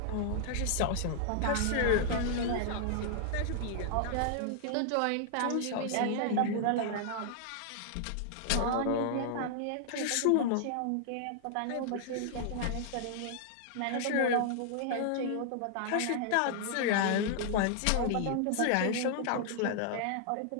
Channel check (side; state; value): both; different; correlation -0.01